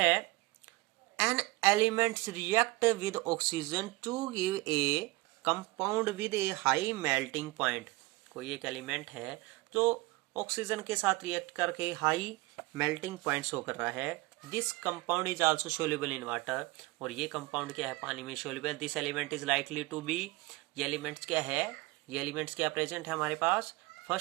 an elements react with oxygen to give a compound with a high melting point. कोई एक एलिमेंट है जो ऑक्सीजन के साथ रिएक्ट करके हाई मेल्टिंग पॉइंट शो कर रहा है। This compound is also soluble in water, और ये कंपाउंड क्या है, पानी में soluble. This element is likely to be, ये एलिमेंट्स क्या है, ये एलिमेंट्स क्या प्रेजेंट है हमारे पास।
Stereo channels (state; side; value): quieter; left; 22.0 dB